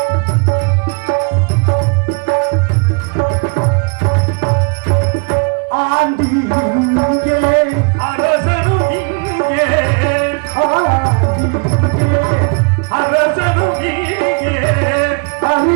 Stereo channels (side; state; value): left; quieter; 34.5 dB